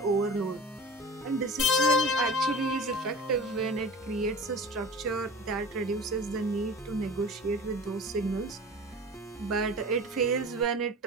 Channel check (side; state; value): both; normal; correlation 0.37